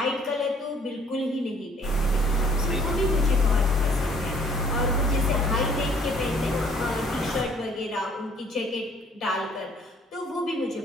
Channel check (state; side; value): normal; both; correlation 0.59